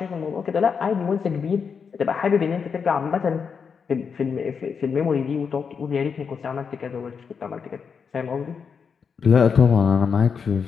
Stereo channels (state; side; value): quieter; right; 6.1 dB